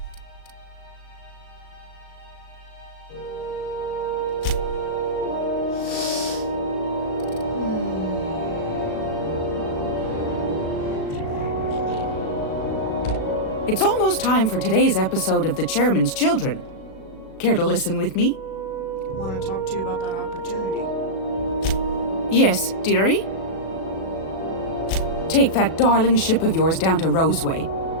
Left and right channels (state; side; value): late; right; 37 ms